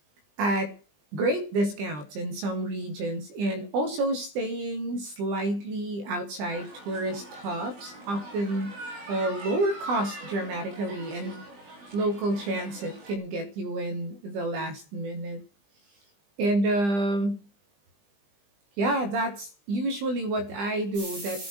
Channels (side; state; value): left; late; 20 ms